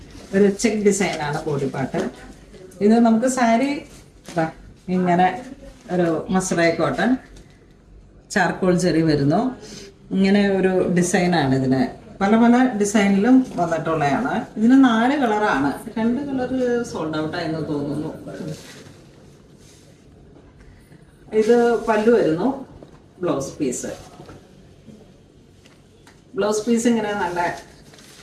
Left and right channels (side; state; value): both; identical; correlation 1.00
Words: ഒരു ചെക്ക് ഡിസൈനാണ് ബോഡി പാർട്ട്. ഇത് നമുക്ക് സാരി ഇങ്ങനെ ഒരു മസ്രായി കോട്ടൺ ചാർക്കോൾ ജെറി വരുന്നു. ഇങ്ങനെ ഒരു ഡിസൈനാണ്. ഇതിന് പല പല ഡിസൈനിലും വന്നിട്ടുള്ളതാണ്. ഇതിന് 4 കളറാണ്. 2 കളർ സോൾഡ് ഔട്ട് ആയെന്ന് തോന്നുന്നു. ഇത് പല്ലു വരുന്നു. ബ്ലൗസ് പീസ് ഇങ്ങനെ നല്ല